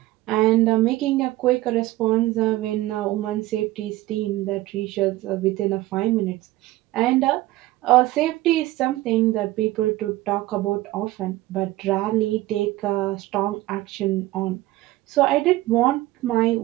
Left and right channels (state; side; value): quieter; left; 17.3 dB